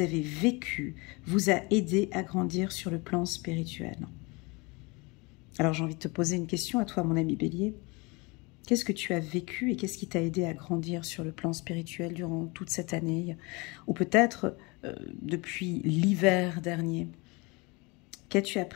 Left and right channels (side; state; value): right; quieter; 26.9 dB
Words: vécu vous a aidé à grandir sur le plan spirituel. Alors j'ai envie de te poser une question à toi, mon ami bélier. Qu'est-ce que tu as vécu et qu'est-ce qui t'a aidé à grandir sur le plan spirituel durant toute cette année? Ou peut-être depuis l'hiver dernier. Qu'as-tu